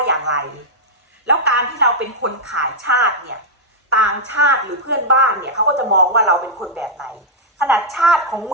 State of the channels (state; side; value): normal; both; correlation -0.05